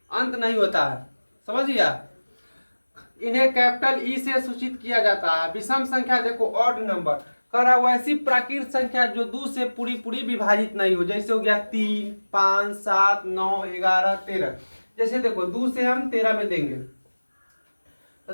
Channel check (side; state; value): both; inverted; correlation -1.00